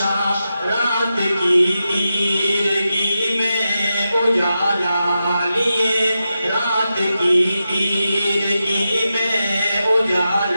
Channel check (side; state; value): both; inverted; correlation -0.89